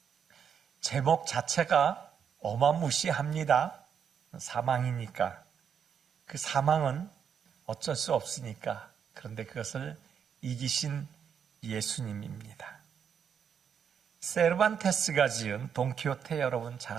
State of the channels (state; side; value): quieter; left; 7.6 dB